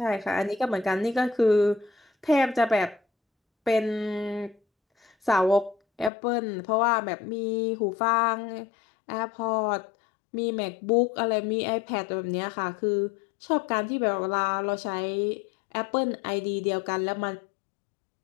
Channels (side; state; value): right; drops out; at 6.1 s